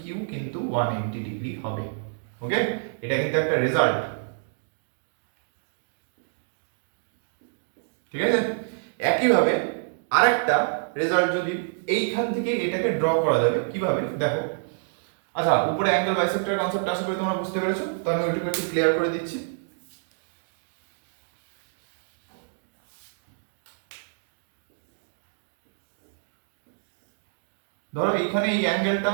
Q কিন্তু 180 ডিগ্রি হবে। ওকে, এটা কিন্তু একটা রেজাল্ট। ঠিক আছে, একইভাবে আরেকটা রেজাল্ট যদি এইখান থেকে এটাকে ড্র করা যাবে কিভাবে দেখো। আচ্ছা, উপরে অ্যাঙ্গেল বাইসেক্টরের কনসেপ্ট আশা করি তোমরা বুঝতে পেরেছো, তো আমি ওইটুকু একটু ক্লিয়ার করে দিচ্ছি। ধরো এখানে এই অ্যাঙ্গেলটা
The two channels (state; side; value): silent; left; digital silence